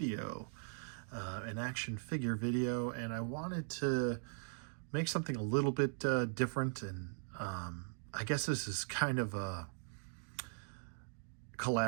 an action figure video, and I wanted to make something a little bit different, and I guess this is kind of a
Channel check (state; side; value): silent; left; digital silence